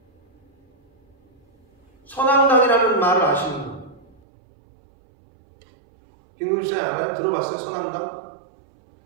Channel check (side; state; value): left; drops out; at 4.2 s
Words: 선앙당이라는 말을 아시는 분? 김금수님 알아요? 들어봤어요? 선앙당?